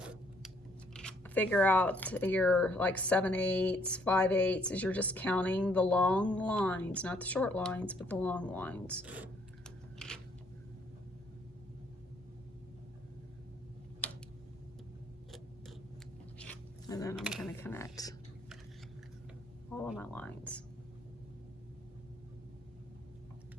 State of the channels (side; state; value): both; normal; correlation 0.66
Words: figure out your like 7/8, 5/8 is you're just counting the long lines, not the short lines, but the long lines. And then I'm going to connect all of my lines.